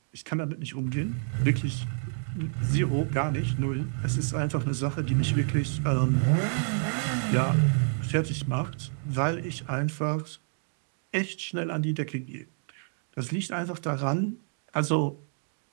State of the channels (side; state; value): left; silent; 59 dB below the other